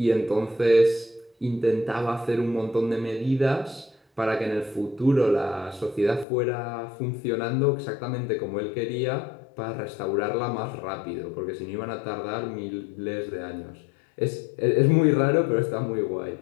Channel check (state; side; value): drops out; right; at 6.2 s